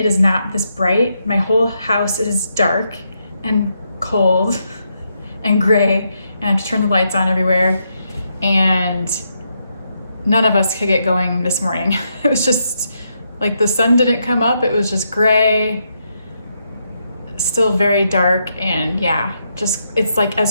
is not this bright. My whole house is dark and cold and gray, and I have to turn the lights on everywhere, and none of us could get going this morning. It was just like the sun didn't come up. It was just gray, still very dark, and yeah, just it's like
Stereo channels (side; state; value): both; inverted; correlation -0.80